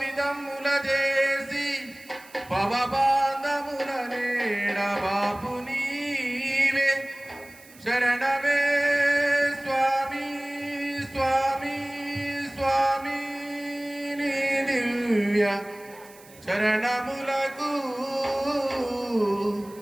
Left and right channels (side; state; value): right; noise; hiss, 23 dB below the sound